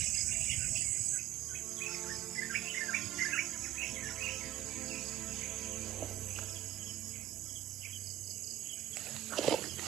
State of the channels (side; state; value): left; quieter; 13.3 dB